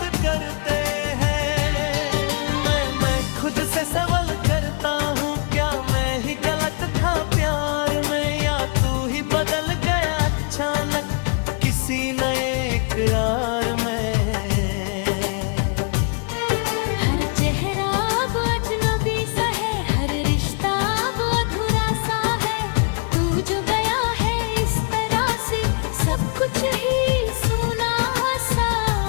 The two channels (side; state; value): right; quieter; 37.5 dB